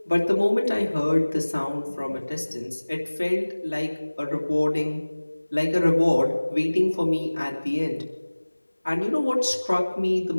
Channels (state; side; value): inverted; both; correlation -1.00